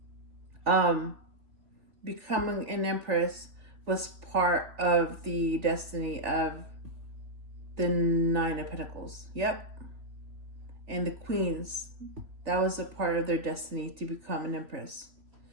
becoming an empress was part of the destiny of the Nine of Pentacles. Yep. And the queens, that was a part of their destiny, to become an empress.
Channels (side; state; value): left; late; 3.3 ms